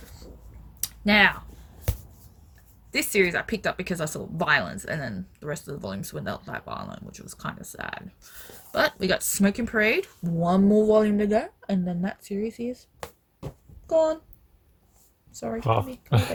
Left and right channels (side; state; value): both; identical; correlation 1.00